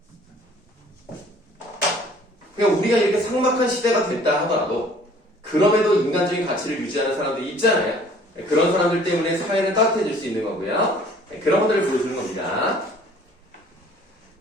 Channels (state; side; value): normal; both; correlation 0.54